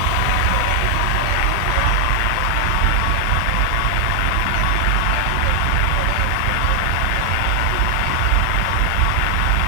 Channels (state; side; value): different; both; correlation 0.00